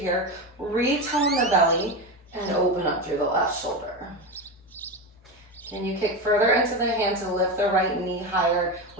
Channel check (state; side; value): normal; both; correlation 0.18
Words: Retone the belly and open up through the left shoulder. Can you kick further into the hand to lift the right knee higher